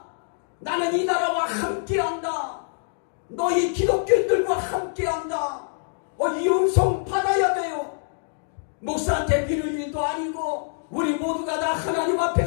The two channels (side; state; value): right; silent; digital silence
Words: 나는 이 나라와 함께한다. 너희 기독교인들과 함께한다. 이 음성 받아야 돼요. 목사한테 빌을 일도 아니고 우리 모두가 다 하나님